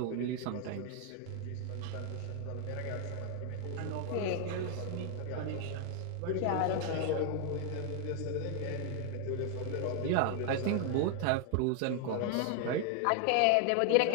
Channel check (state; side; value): different; both; correlation 0.00